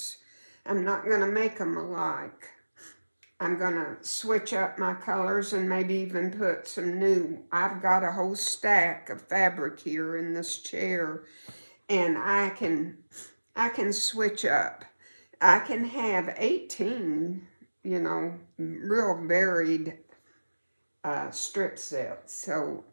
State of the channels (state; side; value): inverted; both; correlation -1.00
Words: I'm not going to make them alike. I'm going to switch up my colors and maybe even put some new. I've got a whole stack of fabric here in this chair, and I can switch up. I can have 18, you know, real varied strip sets. So